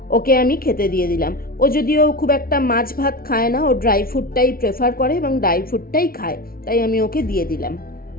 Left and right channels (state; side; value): late; right; 0.43 ms